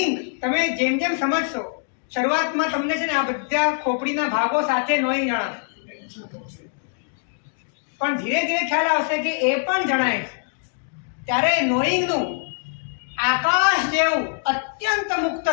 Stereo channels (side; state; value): right; silent; digital silence